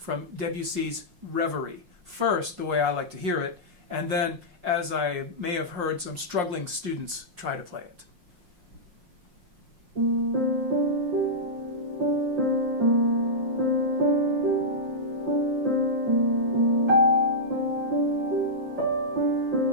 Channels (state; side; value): late; left; 5.6 ms